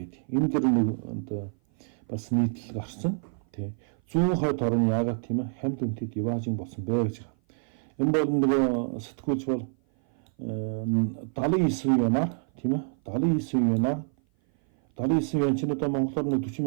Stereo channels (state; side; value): silent; left; 56 dB below the other